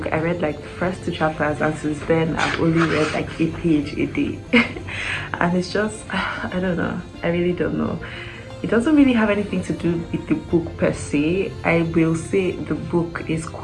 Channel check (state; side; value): identical; both; correlation 1.00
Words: I read like the first 2 chapters, and since then I've only read like a page a day. And it's just, I don't know, I really don't know. It doesn't really have anything to do with the book per se. I will say the book is